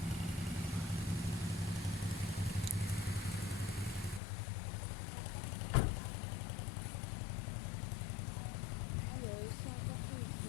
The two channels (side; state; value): right; drops out; at 4.2 s